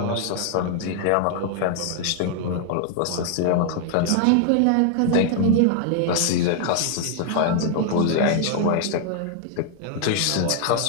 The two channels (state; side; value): different; both; correlation 0.00